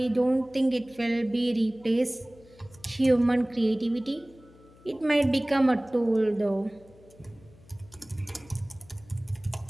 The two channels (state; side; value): noise; left; hum, 25 dB below the sound